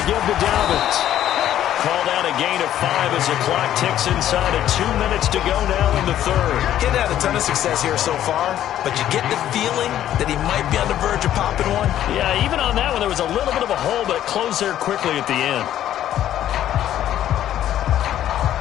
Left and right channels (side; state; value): right; quieter; 11.7 dB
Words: give to Dobbins. Called out a gain of 5 as the clock ticks inside of 2 minutes to go now in the 3rd. He hadn't had a ton of success here so far, but you get the feeling that he might be on the verge of popping one. Yeah, even on that one, there was a little bit of a hole, but it closed there quickly at the end.